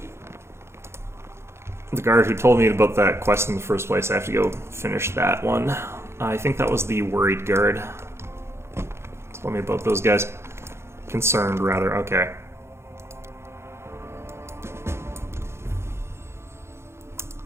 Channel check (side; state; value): left; late; 0.13 ms